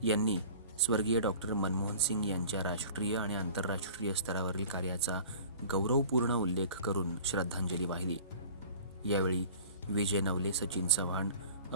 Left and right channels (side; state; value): both; inverted; correlation -0.43